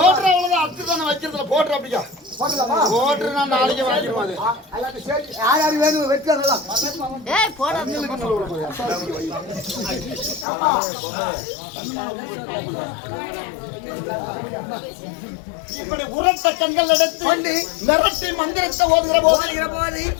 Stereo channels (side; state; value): right; drops out; at 10.5 s